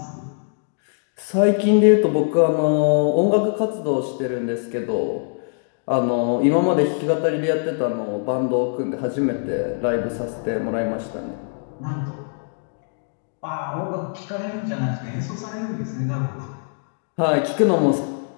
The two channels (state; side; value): silent; right; digital silence